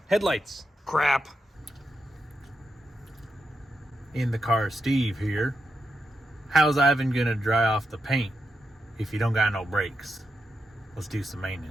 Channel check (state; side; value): normal; both; correlation 0.86